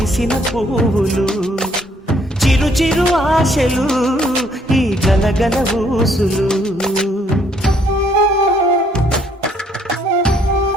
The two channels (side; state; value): both; normal; correlation 0.66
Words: పువ్వులు చిరు చిరు ఆశలు ఈ గలగల ఊసులు